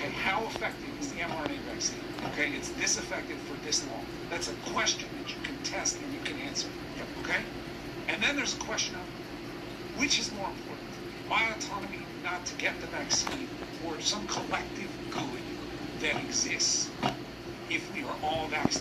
how effective is the mRNA vaccine? Okay, it's this effective for this long. That's a question that you can test and you can answer. Okay? And then there's a question of which is more important? My autonomy not to get the vaccine or some collective good that exists if we are all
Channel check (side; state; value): both; identical; correlation 1.00